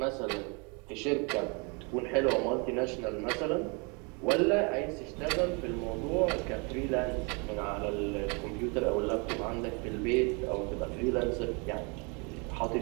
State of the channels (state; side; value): quieter; left; 32.2 dB